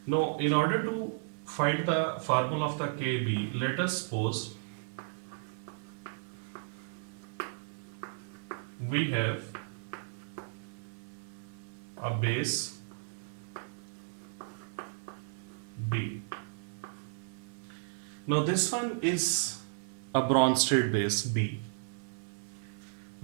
Now, in order to find the formula of the Kb, let us suppose we have a base B. Now this one is a Bronsted base B.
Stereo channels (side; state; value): left; silent; 55 dB below the other